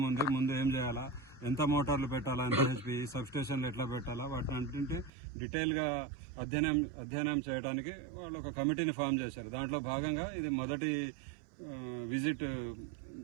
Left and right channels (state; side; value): drops out; left; at 5.1 s